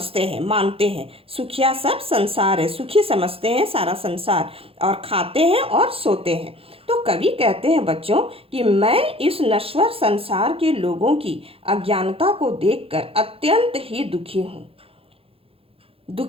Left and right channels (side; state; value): left; late; 0.27 ms